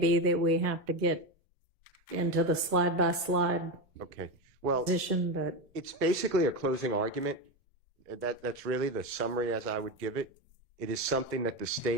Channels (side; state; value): both; normal; correlation 0.15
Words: that we have to get into the slide by slide Okay. Well, position, but it's basically a closing argument. That's really the summary as I would give it. It is something that the